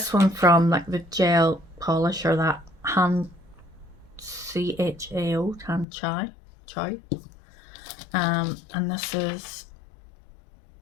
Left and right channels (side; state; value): right; drops out; at 5.9 s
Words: one from like the gel polish, or that hand CHAO, hand chai. And this is